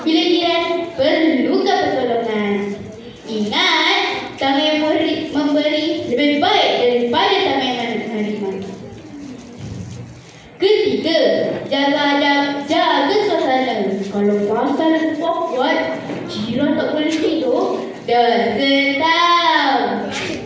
bila jiran perlukan pertolongan. Ingat, tamu yang memberi lebih baik daripada tamu yang menerima. Ketiga, jaga adab, jaga suasana. Kalau pasal awkward, jiran tak boleh tidur, dah tahu.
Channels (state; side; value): identical; both; correlation 1.00